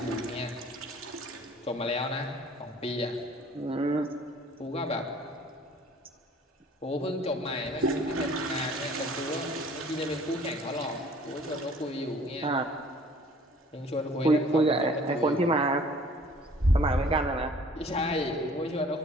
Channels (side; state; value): both; normal; correlation 0.53